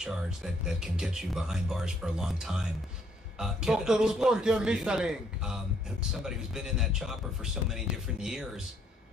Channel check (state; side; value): normal; both; correlation 0.68